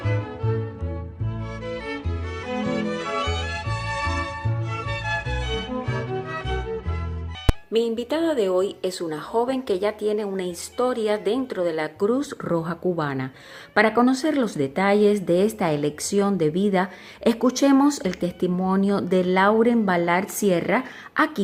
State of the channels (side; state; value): both; identical; correlation 1.00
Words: Mi invitada de hoy es una joven que ya tiene una historia dentro de la Cruz Roja Cubana. Para conocer los detalles de esta elección de vida, escuchemos el testimonio de Lauren Ballard Sierra